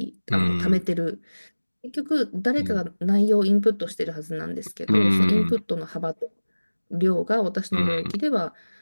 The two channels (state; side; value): inverted; both; correlation -1.00